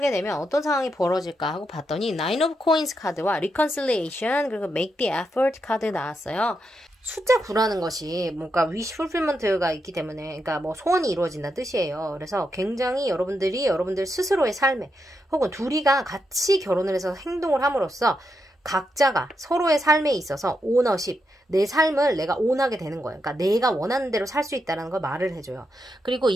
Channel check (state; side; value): normal; both; correlation 0.83